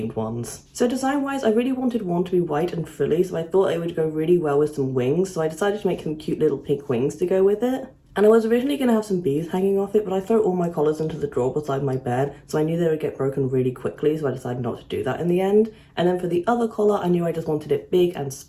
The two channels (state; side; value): identical; both; correlation 1.00